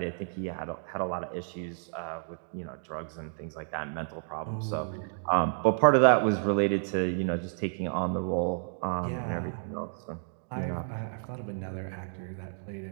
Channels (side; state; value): left; silent; digital silence